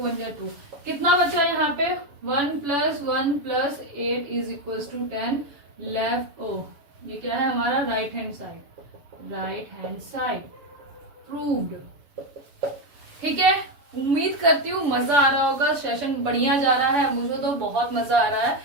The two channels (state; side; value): late; left; 7.0 ms